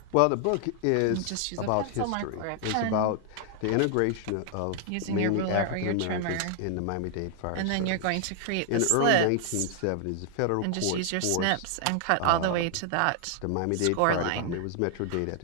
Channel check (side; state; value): both; different; correlation 0.00